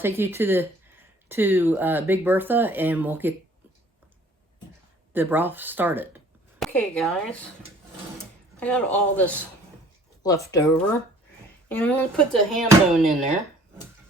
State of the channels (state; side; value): normal; both; correlation 0.54